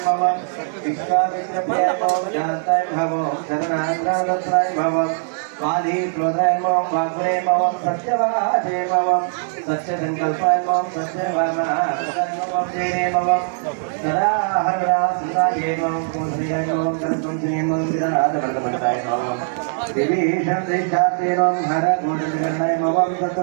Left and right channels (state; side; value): silent; left; 61 dB below the other